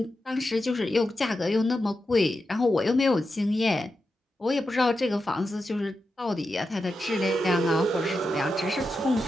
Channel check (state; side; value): normal; both; correlation 0.89